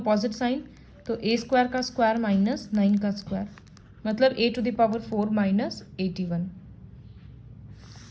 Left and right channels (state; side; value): identical; both; correlation 1.00